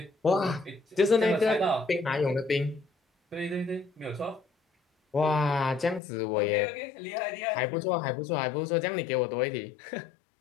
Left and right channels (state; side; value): drops out; right; at 6.0 s